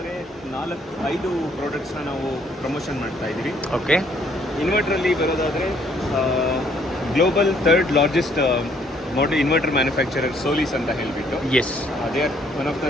4-5 ಪ್ರಾಡಕ್ಟ್ಸ್ನ ನಾವು ಪ್ರಮೋಷನ್ ಮಾಡ್ತಾ ಇದ್ದೀವಿ. ಓಕೆ. ಇನ್ವರ್ಟ್ರಲ್ಲಿ ಬರೋದಾದರೆ global 3rd largest model inverter manufacturer Solis ಅಂತ ಹೇಳಿಬಿಟ್ಟು. Yes. They are one of the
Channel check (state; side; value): normal; both; correlation 0.65